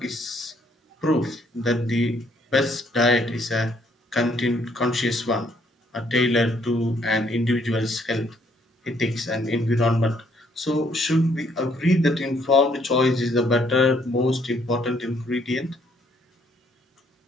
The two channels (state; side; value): normal; both; correlation 0.68